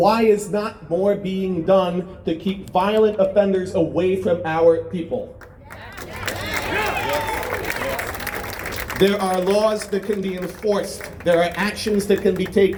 is not more being done to keep violent offenders away from our people? There are laws that can be enforced. There are actions that can be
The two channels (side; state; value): both; identical; correlation 1.00